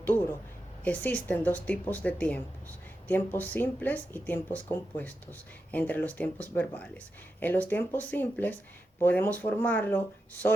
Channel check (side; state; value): both; normal; correlation 0.89